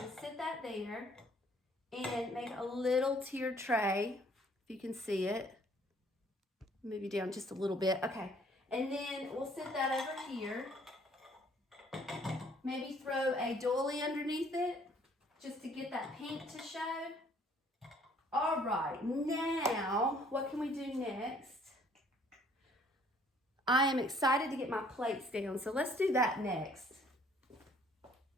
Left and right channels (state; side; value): normal; both; correlation 0.60